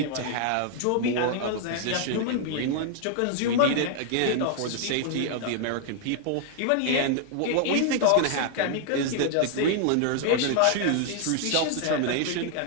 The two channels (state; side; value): different; both; correlation 0.00